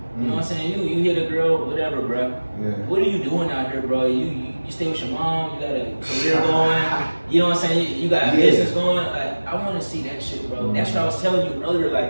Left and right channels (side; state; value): both; inverted; correlation -1.00